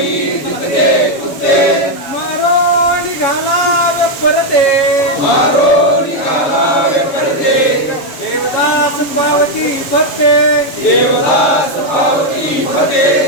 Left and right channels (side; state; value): right; late; 7.2 ms